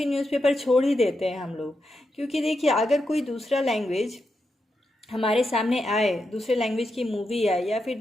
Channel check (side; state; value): both; normal; correlation 0.86